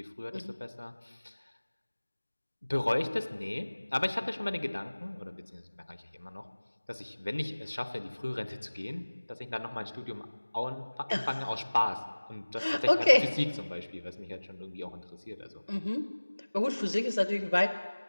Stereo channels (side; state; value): both; inverted; correlation -1.00